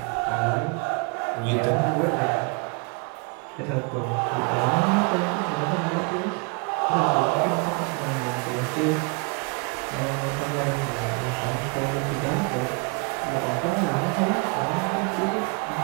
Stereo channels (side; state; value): left; quieter; 32.3 dB